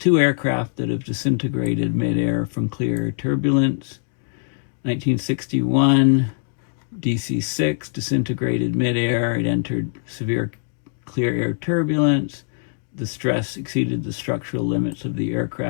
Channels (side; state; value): right; silent; digital silence